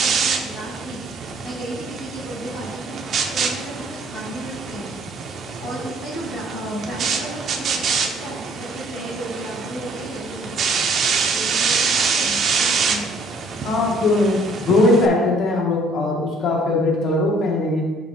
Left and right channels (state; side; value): normal; both; correlation 0.59